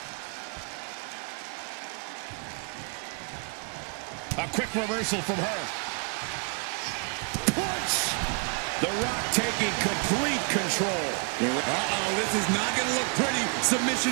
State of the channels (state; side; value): quieter; left; 38.6 dB